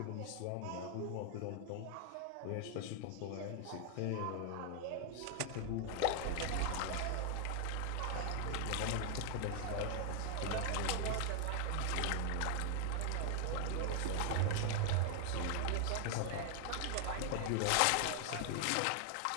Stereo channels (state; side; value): different; both; correlation 0.00